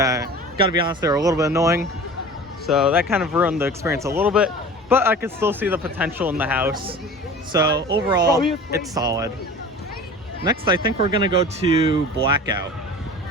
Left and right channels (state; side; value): normal; both; correlation 0.39